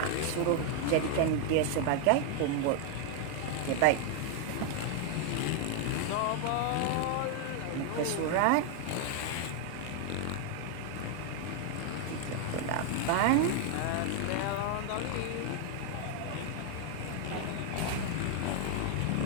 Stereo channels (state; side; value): different; both; correlation 0.00